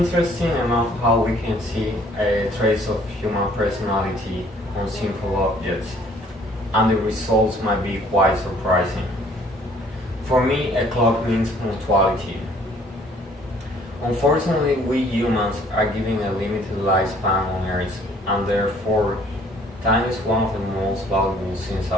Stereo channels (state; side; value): normal; both; correlation 0.59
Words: enough how we can see a trace of human personality on simple objects, and the results might be quite surprising. For me, a clock means punctuality. Unfortunately, we humans are given a limited lifespan on Earth, and therefore, time is one of the most valuable things